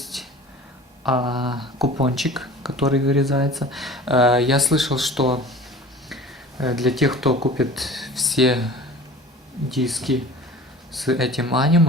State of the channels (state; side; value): normal; both; correlation 0.41